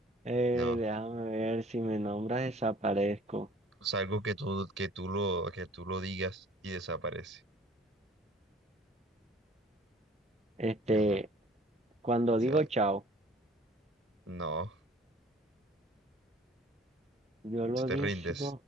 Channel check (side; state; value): both; normal; correlation 0.53